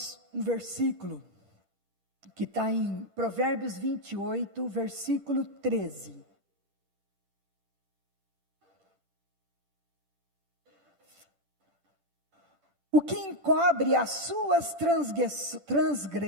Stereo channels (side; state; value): left; late; 10 ms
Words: um versículo que está em Provérbios 28, versículo 13. O que encobre as suas